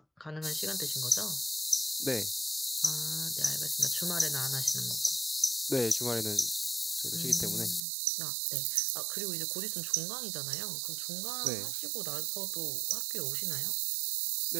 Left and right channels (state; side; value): drops out; left; at 7.8 s